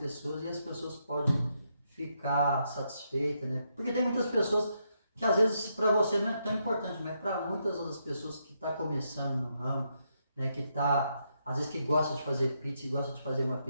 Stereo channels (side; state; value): both; inverted; correlation -0.79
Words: e as pessoas podem ficar satisfeitas, né? Porque tem muitas pessoas que às vezes para você não é tão importante, mas para muitas outras pessoas que estão começando no ramo, né, que tá, às vezes que gosta de fazer pizza e gosta de fazer uma